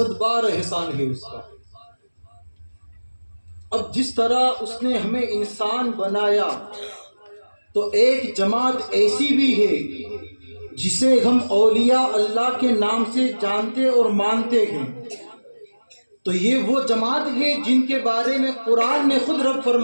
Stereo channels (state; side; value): inverted; both; correlation -1.00